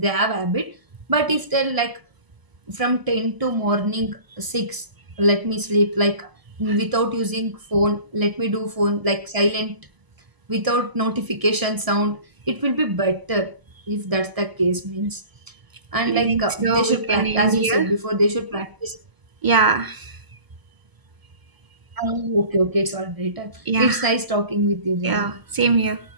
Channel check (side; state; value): left; late; 1.6 ms